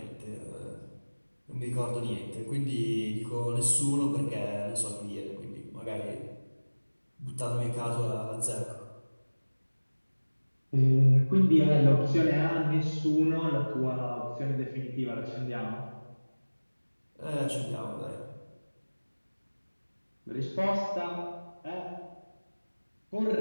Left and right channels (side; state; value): both; inverted; correlation -1.00